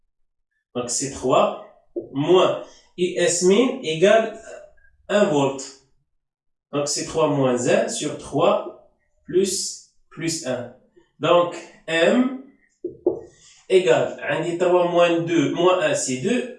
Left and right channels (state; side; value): identical; both; correlation 1.00